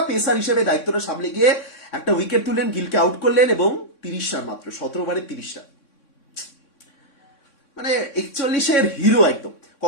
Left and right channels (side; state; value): right; late; 3.6 ms